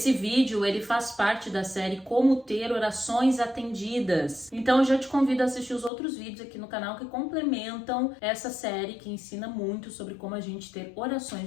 vídeo, ele faz parte da série Como Ter Orações Atendidas. Então eu já te convido a assistir os outros vídeos aqui no canal que complementam essa série, que ensina muito sobre como a gente ter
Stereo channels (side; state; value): right; drops out; at 5.9 s